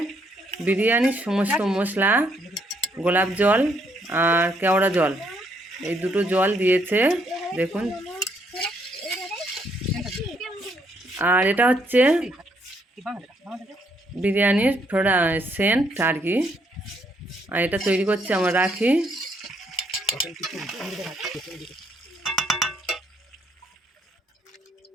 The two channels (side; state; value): both; normal; correlation 0.71